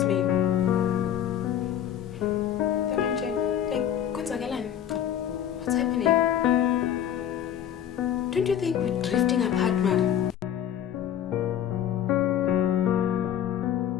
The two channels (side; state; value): right; quieter; 10.0 dB